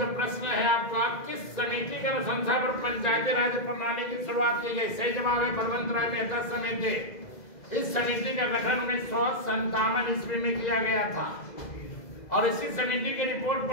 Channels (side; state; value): right; late; 2.0 ms